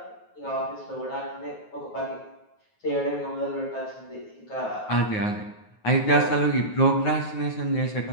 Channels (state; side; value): late; right; 9.4 ms